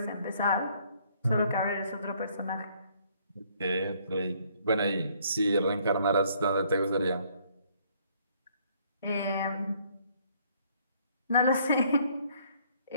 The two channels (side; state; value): both; inverted; correlation -0.64